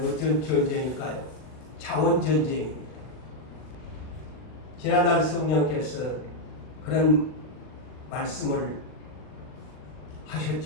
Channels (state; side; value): late; right; 39 ms